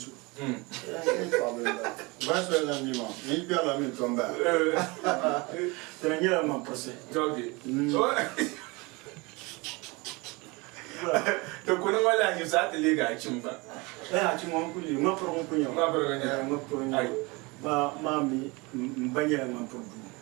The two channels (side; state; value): left; quieter; 25.9 dB